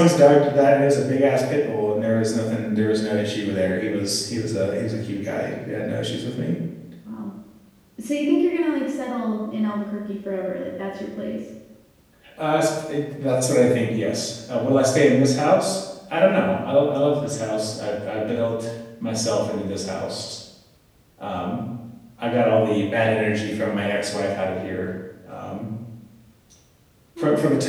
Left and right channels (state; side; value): identical; both; correlation 1.00